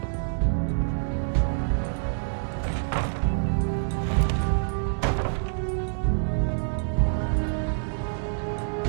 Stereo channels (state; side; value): silent; left; digital silence